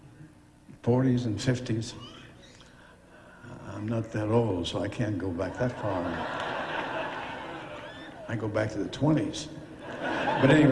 and 50s. I'm not that old, so I can't go back that far. I go back to the 20s. But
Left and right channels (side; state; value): both; identical; correlation 1.00